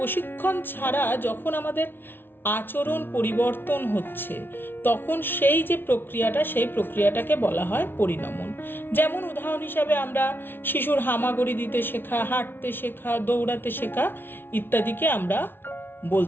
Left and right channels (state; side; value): late; right; 0.10 ms